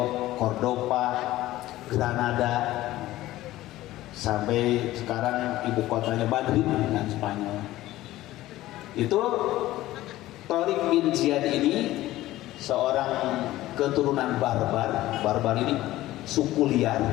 Cordoba, Granada, sampai sekarang ibu kotanya Madrid dengan Spanyol. Itu Tariq bin Ziyad ini seorang keturunan barbar ini suku liar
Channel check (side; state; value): right; quieter; 16.0 dB